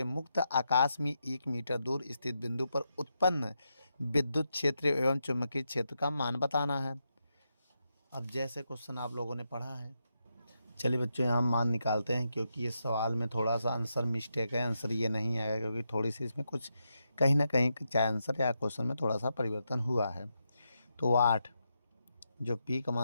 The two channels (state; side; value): inverted; both; correlation -0.84